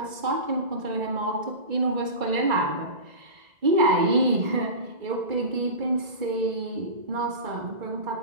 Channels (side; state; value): left; late; 2.3 ms